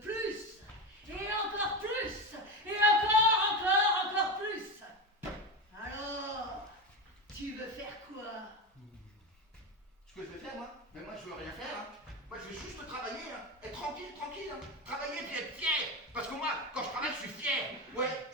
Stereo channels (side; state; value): both; normal; correlation 0.19